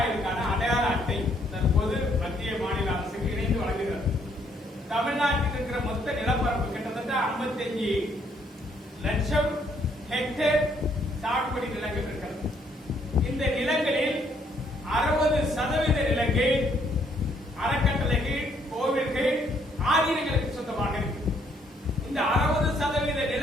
அடையாள அட்டை தற்போது மத்திய மாநில அரசுக்கு இணைந்து வழங்குகிறது. தமிழ்நாட்டில் இருக்கிற மொத்த நிலப்பரப்பு கிட்டத்தட்ட 55 லட்சம் ஹெக்டேர் சாகுபடி நிலங்கள் இருக்கிறது. இந்த நிலங்களில் 60% நிலங்கள் அறக்கட்டளைகள், கோவில்கள், ஆதீனங்களுக்கு சொந்தமாக இருக்கு. இந்த 60%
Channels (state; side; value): normal; both; correlation 0.68